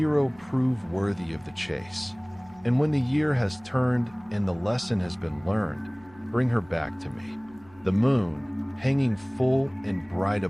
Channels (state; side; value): noise; right; hum, 26 dB below the sound